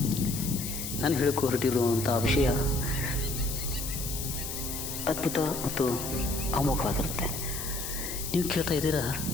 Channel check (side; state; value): left; noise; hiss, 6 dB below the sound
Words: ನಾನು ಹೇಳಕ್ಕೆ ಹೊರಟಿರುವಂಥ ವಿಷಯ ಅದ್ಭುತ ಮತ್ತು ಅಮೋಘವಾಗಿರುತ್ತೆ. ನೀವು ಕೇಳ್ತಾ ಇದ್ದೀರಾ,